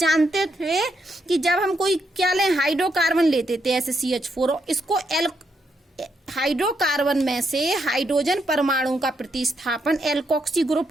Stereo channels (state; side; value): normal; both; correlation 0.79